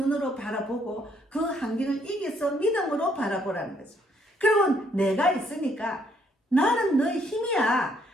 바라보고 그 환경을 이겨서 믿음으로 바라보라는 거죠. 그리고 내가 있으니까 나는 너의 힘이야.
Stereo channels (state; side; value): normal; both; correlation 0.69